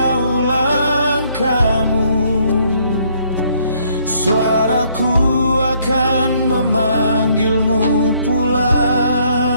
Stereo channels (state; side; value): inverted; both; correlation -0.66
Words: langkahmu, suaraku akan memanggilmu